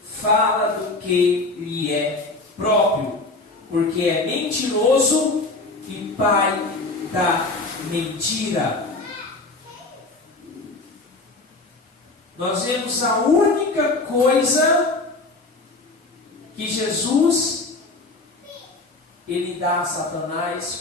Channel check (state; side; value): quieter; right; 3.2 dB